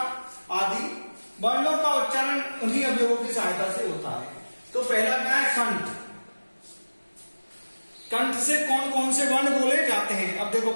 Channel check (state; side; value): inverted; both; correlation -1.00